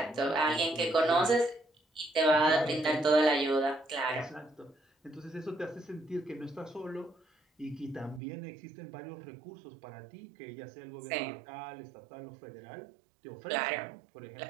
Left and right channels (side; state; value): left; drops out; at 8.2 s